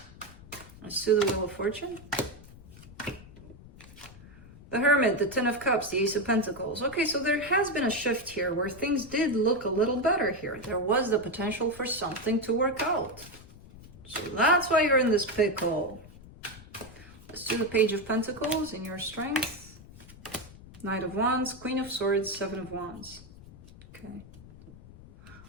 Let's do the Wheel of Fortune. The Hermit, the Ten of Cups, the Ace of Pentacles. Okay, so there has been a shift here where things did look a little better here. There was the potential for something to work out. So that's why you're in this pickle. Let's do the Page of Pentacles in your strength. Knight of Wands, Queen of Swords, Seven of Wands. Okay.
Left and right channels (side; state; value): left; noise; rumble, 19 dB below the sound